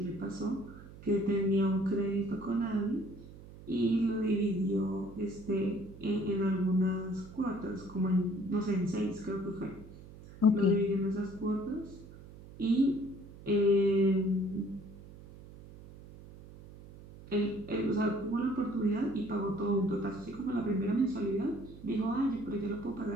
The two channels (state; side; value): noise; right; hum, 17 dB below the sound